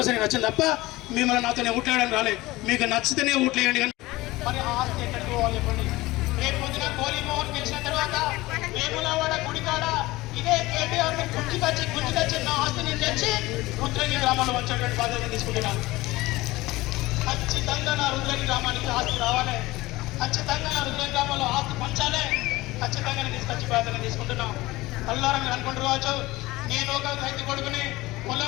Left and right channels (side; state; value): right; quieter; 19.5 dB